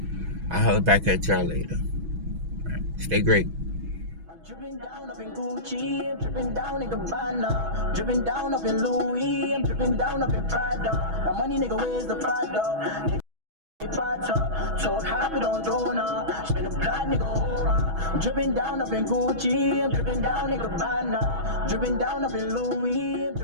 I'll holler back at y'all later. Right. Stay great. Dripping down up in Gucci, I'm dripping down in Gabbana, dripping down up in Louis, I'm dripping down up in Prada. My money, nigga, where's the Prada? Told hop it on Dona, spin a plot, nigga, aura. I'm dripping down up in Gucci, I'm dripping down in Gabbana, dripping down up in Louis, I'm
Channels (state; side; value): late; left; 6.2 ms